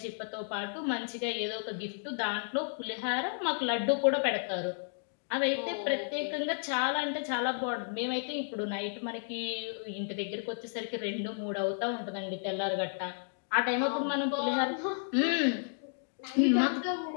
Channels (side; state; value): right; silent; digital silence